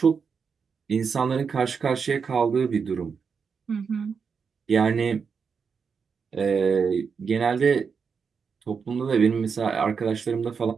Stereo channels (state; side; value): quieter; left; 5.9 dB